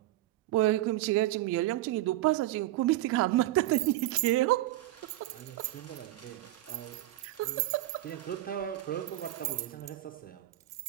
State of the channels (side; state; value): left; quieter; 15.6 dB